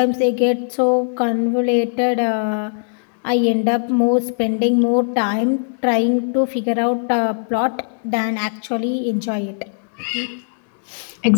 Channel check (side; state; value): right; silent; digital silence